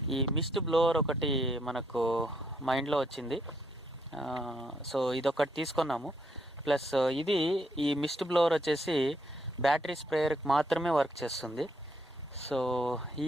ఈ మిస్ట్ బ్లోవర్ ఒకటి మనకు మైండ్లో వచ్చింది. సో ఇదొకటి తీసుకున్నాము. ప్లస్ ఈ మిస్ట్ బ్లోవర్ వచ్చేసి బ్యాటరీ స్ప్రేయర్కి మాత్రమే వర్క్ చేస్తుంది. సో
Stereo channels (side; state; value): both; normal; correlation 0.73